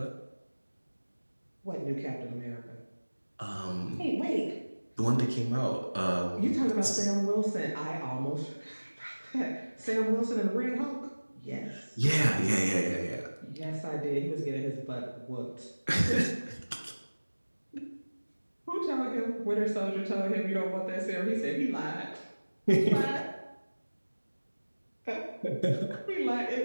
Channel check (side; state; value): both; inverted; correlation -1.00